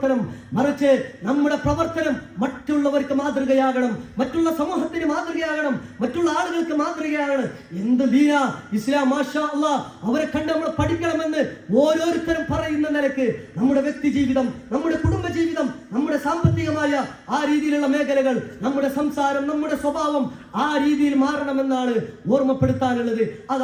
മറിച്ച് നമ്മുടെ പ്രവർത്തനം മറ്റുള്ളവർക്ക് മാതൃകയാകണം, മറ്റുള്ള സമൂഹത്തിന് മാതൃകയാകണം, മറ്റുള്ള ആളുകൾക്ക് മാതൃകയാകണം. എന്ത് ദീന ഇസ്ലാം, മാഷാ അല്ലാഹ്, അവരെ കണ്ട് നമ്മൾ പഠിക്കണമെന്ന് ഓരോരുത്തരും പറയുന്ന നിലക്ക് നമ്മുടെ വ്യക്തി ജീവിതം, നമ്മുടെ കുടുംബ ജീവിതം, നമ്മുടെ സാമ്പത്തികമായ ആ രീതിയിലുള്ള മേഖലകൾ, നമ്മുടെ സംസാരം, നമ്മുടെ സ്വഭാവം ആ രീതിയിൽ മാറണമെന്നാണ് ഓർമ്മപ്പെടുത്താനുള്ളത്.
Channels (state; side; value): identical; both; correlation 1.00